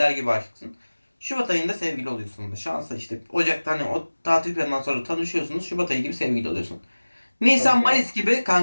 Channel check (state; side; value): inverted; both; correlation -1.00